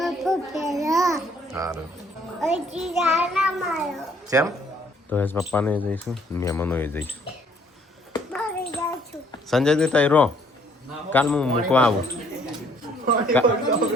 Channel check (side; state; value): both; normal; correlation 0.63